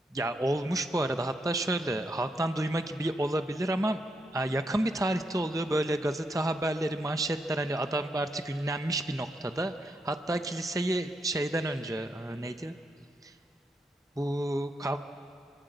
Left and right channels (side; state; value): both; normal; correlation 0.80